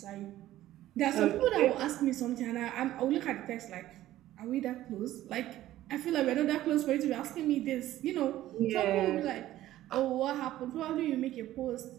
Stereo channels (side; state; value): left; quieter; 14.3 dB